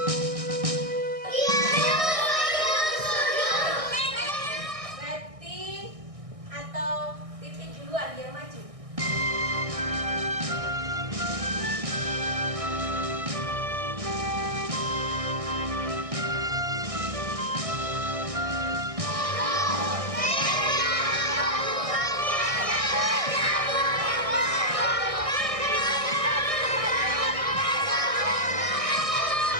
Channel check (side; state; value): left; late; 1.6 ms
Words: lagi yang maju.